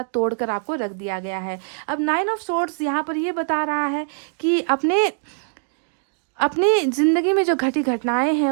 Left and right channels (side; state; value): left; silent; digital silence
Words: तोड़ कर आपको रख दिया गया है। अब 9 ऑफ सोर्ड्स यहाँ पर ये बता रहा है कि अपनी ज़िंदगी में जो घटी घटनाएं हैं